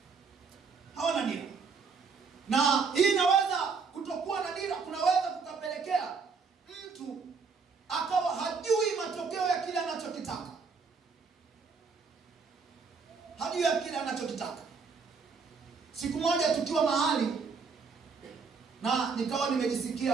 Hawana dira. Na hii inaweza kutokuwa na dira kunaweza kukapelekea mtu akawa hajui matokeo ya kile anachokitaka. Siku moja tukiwa mahali na nikawa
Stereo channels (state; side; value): quieter; left; 5.1 dB